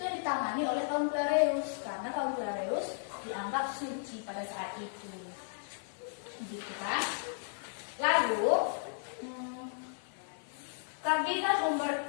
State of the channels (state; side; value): silent; right; 55 dB below the other